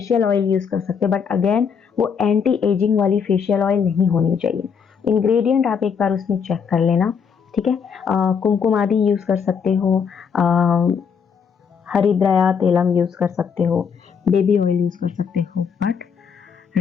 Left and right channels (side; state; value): right; quieter; 6.6 dB